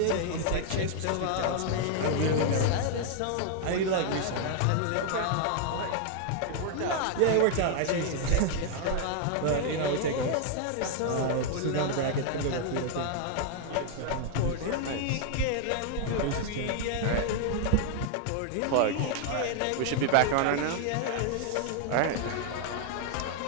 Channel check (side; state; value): both; different; correlation 0.00